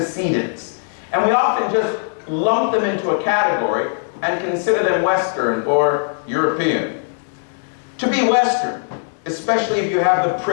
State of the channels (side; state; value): right; silent; digital silence